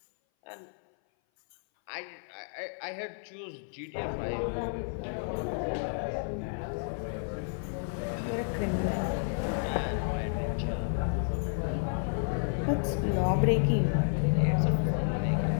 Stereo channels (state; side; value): silent; right; 57 dB below the other